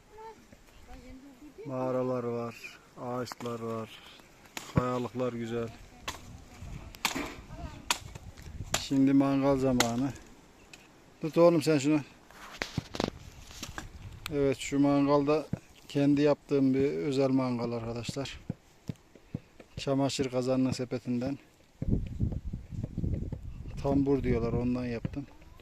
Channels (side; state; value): both; identical; correlation 1.00